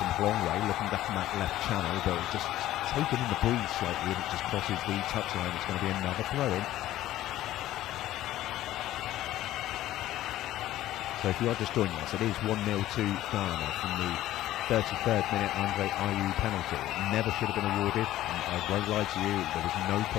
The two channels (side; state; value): right; quieter; 14.3 dB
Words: from Blongway, looking back in that left channel, but it's just taken in the breeze slightly, and it just crosses the touchline. It's going to be another throw-in. So if you are just joining us, it is 1-0 to Ghana from the 33rd minute Andre Ayew penalty. It never should have been awarded, and I won't lie to you, there was no